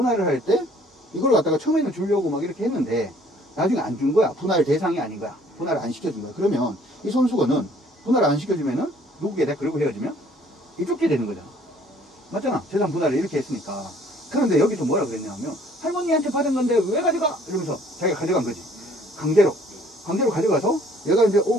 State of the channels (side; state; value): both; normal; correlation 0.58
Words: 할 때 이걸 갖다가 처음에는 주려고 막 이렇게 했는데 나중에 안 준 거야. 분할 대상이 아닌 거야. 분할을 안 시켜준 거야. 그러면 이 손수건은 분할 안 시켜주면은 누구게 돼? 그리고 헤어지면 이쪽게 되는 거잖아. 맞잖아. 재산 분할을 이렇게 했으니까. 그런데 여기서 뭐라 그랬냐면 할머니한테 받은 건데 왜 가져가? 이러면서 자기가 가져간 거지. 강제로 가져가서 얘가 이제